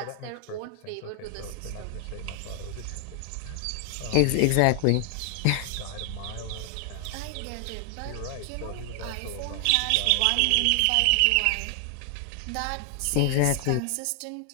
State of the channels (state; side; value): different; both; correlation 0.00